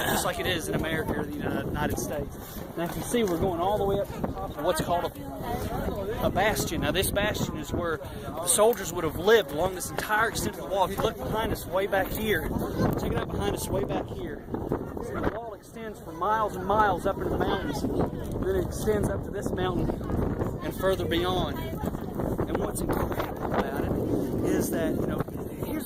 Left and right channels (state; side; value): identical; both; correlation 1.00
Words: like it is in America or the United States. Now, if you see, we're going all the way up to the top of what's called a a bastion. Now this bastion is where the soldiers would have lived along this entire extent of the wall. If you look behind us way back here, check it out behind us way back here. See, the wall extends for miles and miles up into the mountains. Then it extends up to this mountain and further beyond. And what's incredible about it is that, you know, here's